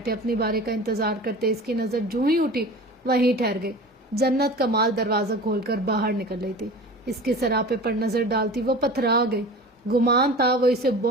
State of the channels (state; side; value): normal; both; correlation 0.37